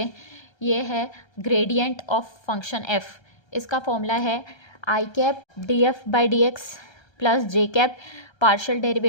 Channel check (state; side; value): late; right; 1.3 ms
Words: ये है ग्रेडियंट ऑफ फंक्शन एफ। इसका फॉर्मूला है i cap d f by D x plus j cap partial